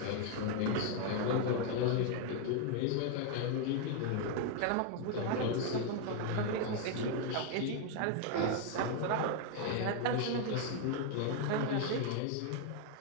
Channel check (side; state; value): both; different; correlation 0.01